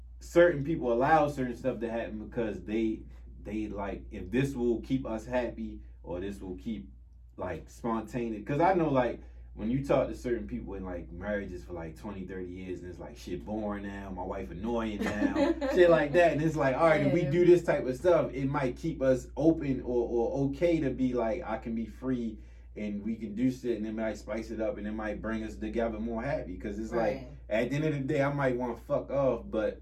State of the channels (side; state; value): both; identical; correlation 1.00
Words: certain people allow certain stuff to happen because they like, if this will keep us happy or this will keep like spontaneous. Because I know like when you talk to certain people in like marriages for like 20, 30 years and it's like shit boring now, my wife annoying now, shit like that. And it's like, all right, if we do this type of stuff, it might keep us open or okay to be like, I can be free and we can do shit and it might spice it up and it might bring us together more happy. Because it's like, at the end of the day, I might want to fuck off, but